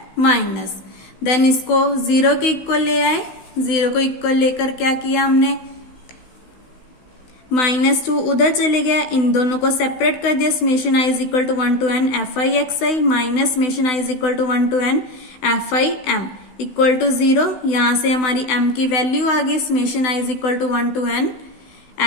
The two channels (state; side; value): late; right; 16 ms